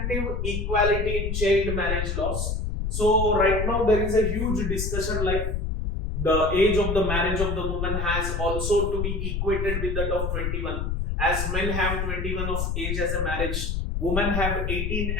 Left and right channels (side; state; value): left; noise; rumble, 1 dB below the sound